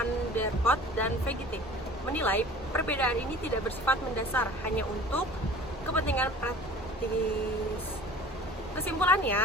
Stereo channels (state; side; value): normal; both; correlation 0.44